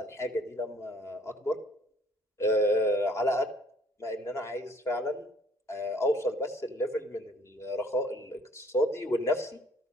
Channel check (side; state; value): both; normal; correlation 0.58